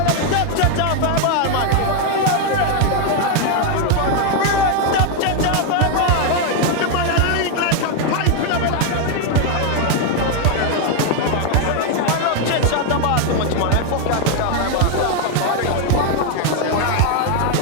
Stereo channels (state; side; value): different; both; correlation 0.01